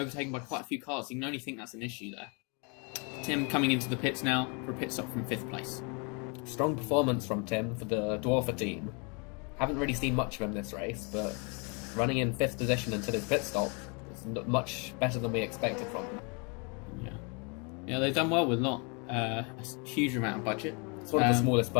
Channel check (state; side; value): quieter; right; 33.7 dB